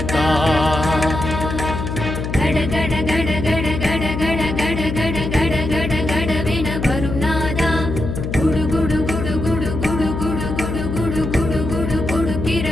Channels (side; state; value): left; noise; hum, 4 dB below the sound